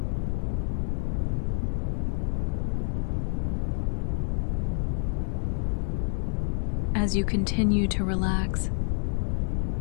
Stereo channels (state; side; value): silent; right; 56 dB below the other